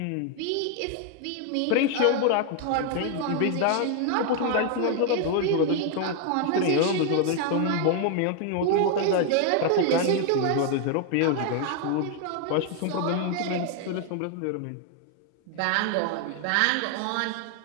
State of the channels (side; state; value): both; different; correlation 0.00